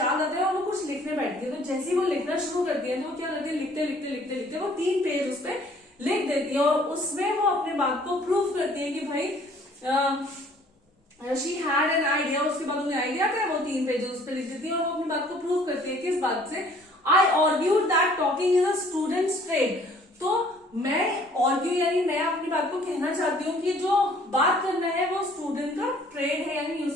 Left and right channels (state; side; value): normal; both; correlation 0.57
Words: आता है और वो कुछ लिखने बैठती है। तो जैसे ही वो लिखना शुरू करती है तो वो क्या करती है, लिखते वो 3 पेज उस पर लिख देती है और उसमें वो अपने बात को प्रूफ करती है कि भाई शी हैड एन आइडिया। उसके बाद उन्हें आइडिया क्या है, वो 3 पेजेस उस पर लिख देती है और वो अपनी बात को प्रूव करती है। किस बात से, I argued that talking is a students trade. तो मैं आर्ग्यू यानी मैं अपनी बात को कहना चाहती हूँ कि जो बात करना है वो स्टूडेंट का ट्रेड है, यानी